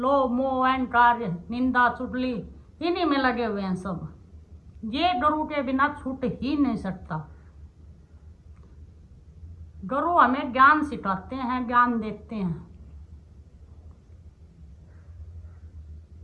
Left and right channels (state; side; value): identical; both; correlation 1.00